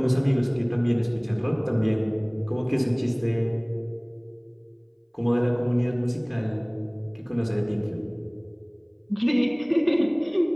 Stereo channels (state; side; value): identical; both; correlation 1.00